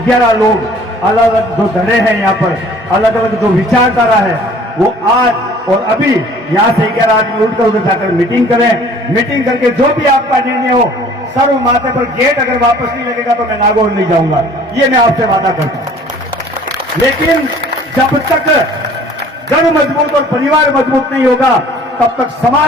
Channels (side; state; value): both; normal; correlation 0.52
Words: लोग अलग अलग जो धड़े हैं यहाँ पर, अलग अलग जो विचारधारा है, वो आज और अभी यहाँ से 11 आदमी उठकर उधर जाकर मीटिंग करें। मीटिंग करके जो भी आपका निर्णय हो, सर्व माथे पर गेट अगर वापस नहीं लगेगा तो मैं नागौर नहीं जाऊंगा, ये मैं आपसे वादा करता हूं। लेकिन जब तक घर मजबूत और परिवार मजबूत नहीं होगा तब तक